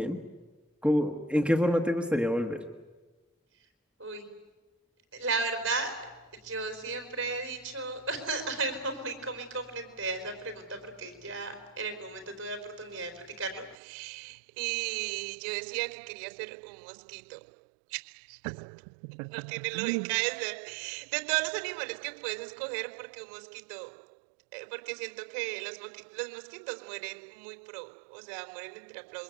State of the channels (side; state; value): left; drops out; at 13.8 s